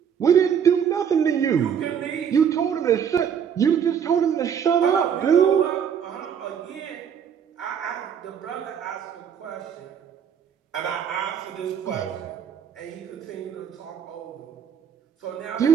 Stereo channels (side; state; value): left; quieter; 8.0 dB